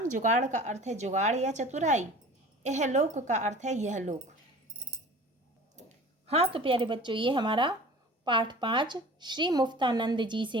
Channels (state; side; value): normal; both; correlation 0.42